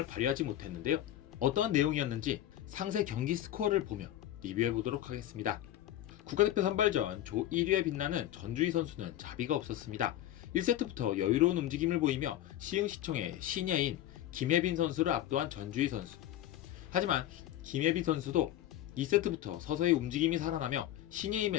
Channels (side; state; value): right; quieter; 12.8 dB